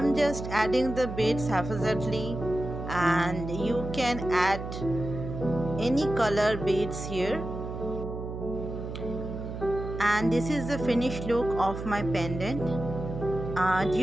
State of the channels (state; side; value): noise; right; hum, 7 dB below the sound